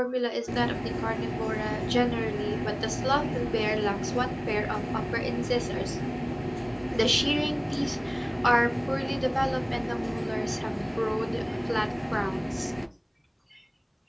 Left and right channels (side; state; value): both; identical; correlation 1.00